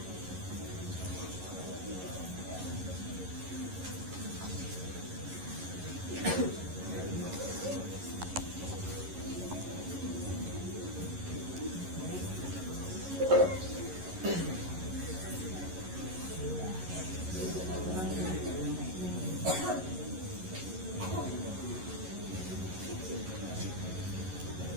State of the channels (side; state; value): left; late; 11 ms